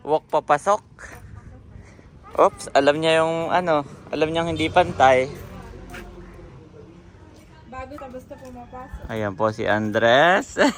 Walk papasok? Oops, alam niya yung alam niyang hindi pantay. Bago tapos na pumapasok. Ayan po si Andres.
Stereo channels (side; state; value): both; identical; correlation 1.00